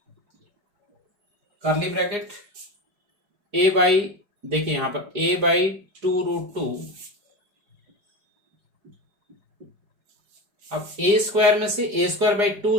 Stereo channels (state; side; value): late; left; 4.9 ms